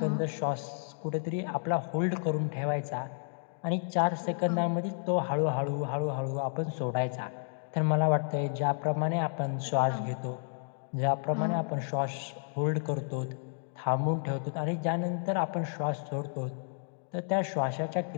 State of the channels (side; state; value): right; silent; digital silence